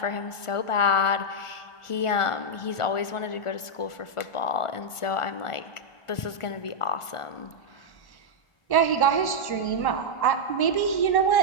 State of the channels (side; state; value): right; late; 1.4 ms